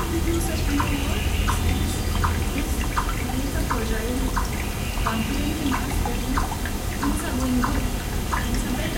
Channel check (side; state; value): both; identical; correlation 1.00